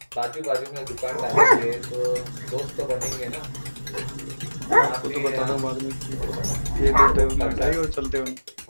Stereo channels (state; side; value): inverted; both; correlation -1.00